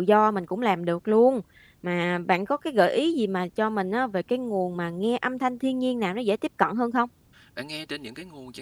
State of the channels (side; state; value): both; identical; correlation 1.00